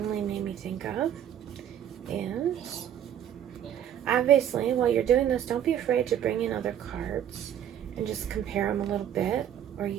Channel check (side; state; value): left; quieter; 10.0 dB